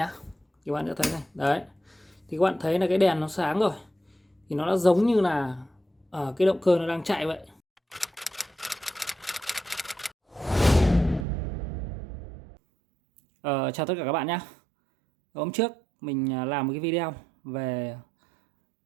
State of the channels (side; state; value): left; drops out; at 11.2 s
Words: Các bạn sẽ thấy này. Đấy. Thì các bạn thấy là cái đèn nó sáng rồi. Thì nó đã giống như là cái động cơ nó đang chạy vậy. Chào tất cả các bạn nhé. Hôm trước mình làm một cái video về